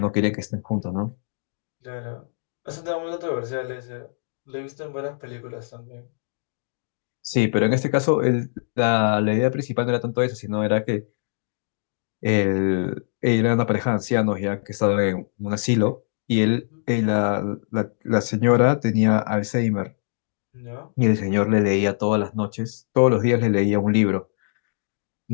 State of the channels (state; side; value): silent; right; digital silence